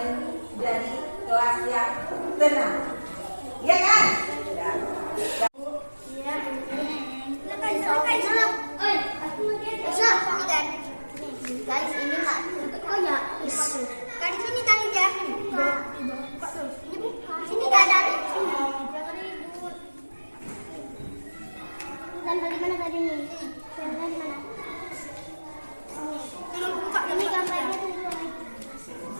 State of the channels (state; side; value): inverted; both; correlation -1.00